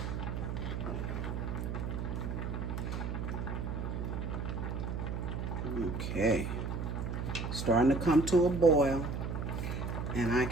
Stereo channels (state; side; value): noise; right; hum, 3 dB below the sound